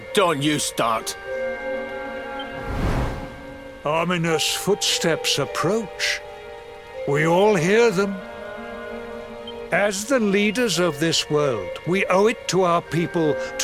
don't you start. Ominous footsteps approach. We all hear them. As the leaders of this world, we owe it to our people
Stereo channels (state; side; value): identical; both; correlation 1.00